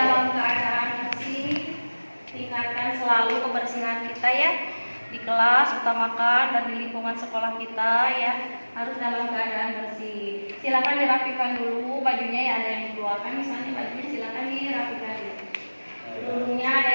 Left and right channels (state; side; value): inverted; both; correlation -1.00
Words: keadaan bersih. Tingkatkan selalu kebersihan kita ya. Di kelas utamakan dan di lingkungan sekolah kita ya harus dalam keadaan bersih. Silakan dirapikan dulu bajunya ya, ada yang dikeluarkan misalnya bajunya silakan dirapikan dulu. Dulunya